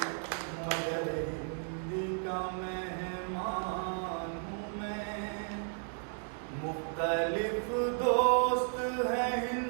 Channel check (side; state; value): left; silent; 55 dB below the other